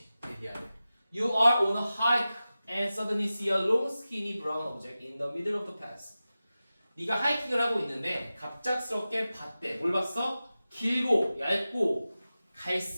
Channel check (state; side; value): inverted; both; correlation -0.95